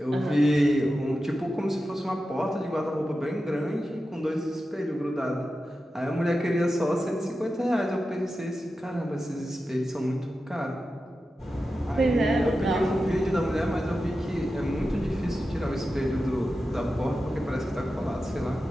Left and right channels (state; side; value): normal; both; correlation 0.92